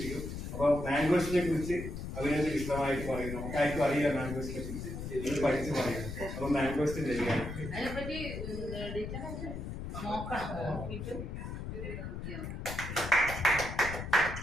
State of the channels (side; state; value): left; noise; rumble, 7 dB below the sound